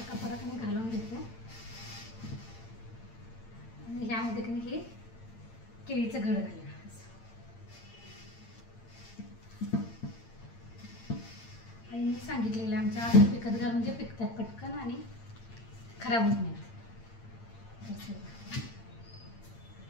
कपडा की नाही घालून घेते आणि ह्यामध्ये की नाही हे केळीचं घड घालूया. आईने सांगितलेलं आमच्या असं पिकत घाल म्हणजे पिकतात पटकन आणि खराब होत नाही.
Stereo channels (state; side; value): late; right; 8.8 ms